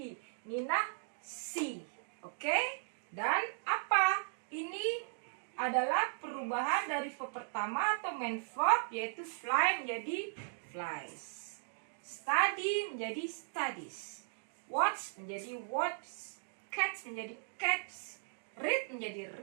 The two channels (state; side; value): silent; left; digital silence